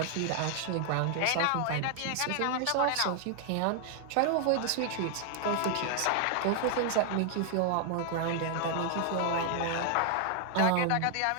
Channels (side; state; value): both; different; correlation 0.00